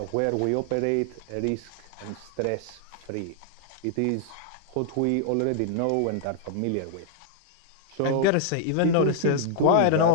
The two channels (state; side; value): different; both; correlation -0.01